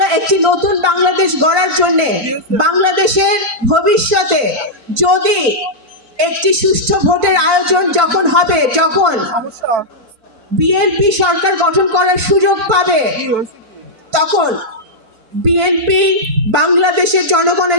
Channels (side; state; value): left; late; 4.4 ms